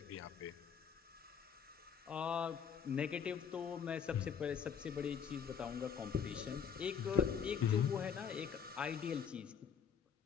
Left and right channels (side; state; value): right; quieter; 7.3 dB